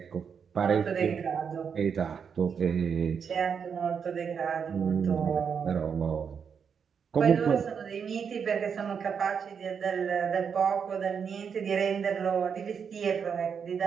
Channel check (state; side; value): quieter; left; 6.8 dB